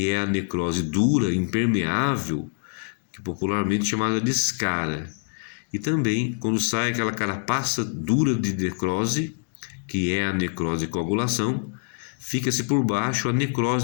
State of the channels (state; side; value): silent; right; 62 dB below the other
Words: é a necrose dura, impermeável, que popularmente chamada de escara. E também, quando sai aquela carapaça dura de necrose, que é a necrose de coagulação, fica-se por baixo a